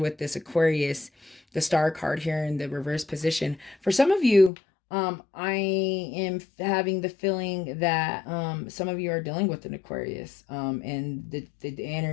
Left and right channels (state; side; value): drops out; right; at 4.5 s